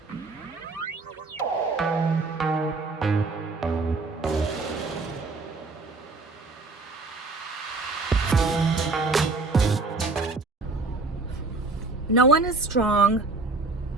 one is strong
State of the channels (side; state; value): left; quieter; 3.6 dB